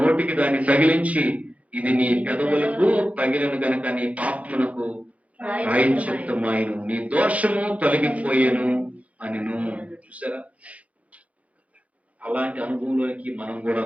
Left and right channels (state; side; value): late; left; 0.066 ms